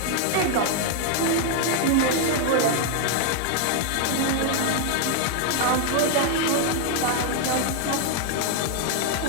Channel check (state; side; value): different; both; correlation 0.00